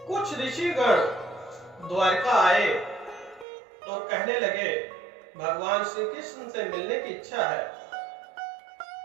कुछ ऋषिगण द्वारका आए और कहने लगे, भगवान श्री कृष्ण से मिलने की इच्छा है।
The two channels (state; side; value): drops out; left; at 3.5 s